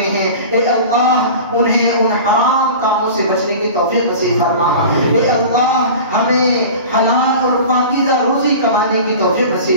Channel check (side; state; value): both; inverted; correlation -0.36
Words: ہیں، اے اللہ انہیں ان حرام کاموں سے بچنے کی توفیق نصیب فرما۔ اے اللہ ہمیں حلال اور پاکیزہ روزی کمانے کی توفیق